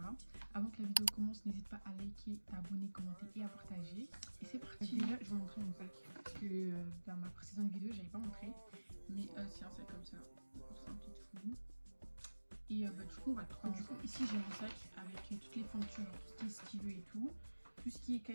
Avant que la vidéo commence, n'hésite pas à liker, à abonner, commenter et à partager. Et c'est parti. Déjà, je vais vous montrer mon sac. Parce que dans ma précédente vidéo, j'avais pas montré. Mais c'est un sac comme ça. C'est un petit fou. Et du coup, on va trouver. Du coup, ici, j'ai un sac avec toutes les fournitures, tout ce qui est stylo et tout. Tout ce qui est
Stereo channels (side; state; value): both; inverted; correlation -1.00